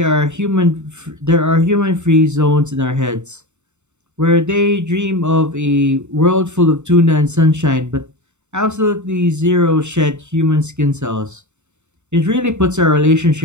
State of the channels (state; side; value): late; left; 0.83 ms